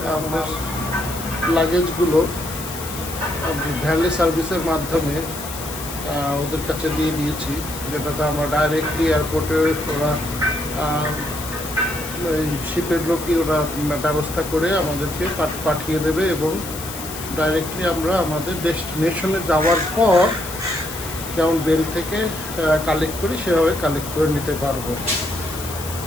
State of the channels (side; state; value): left; noise; hiss, 10 dB below the sound